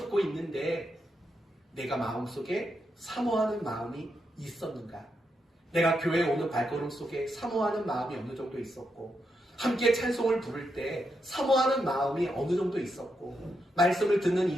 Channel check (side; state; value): both; normal; correlation 0.83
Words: 있는데 내가 마음속에 사모하는 마음이 있었는가? 내가 교회에 오는 발걸음 속에 사모하는 마음이 어느 정도 있었고 함께 찬송을 부를 때 사모하는 마음이 어느 정도 있었고 말씀을 듣는